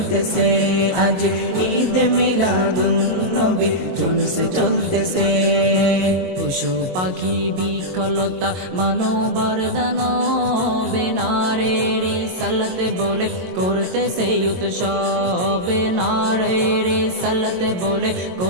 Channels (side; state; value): left; late; 22 ms